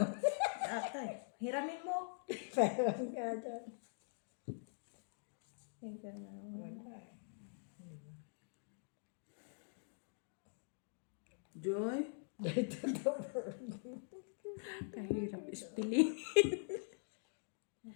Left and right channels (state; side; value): silent; right; digital silence